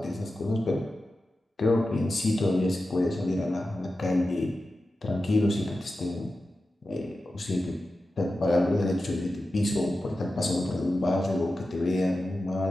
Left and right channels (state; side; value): normal; both; correlation 0.93